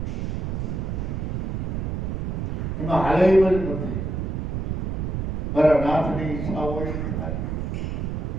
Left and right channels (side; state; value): right; noise; rumble, 2 dB below the sound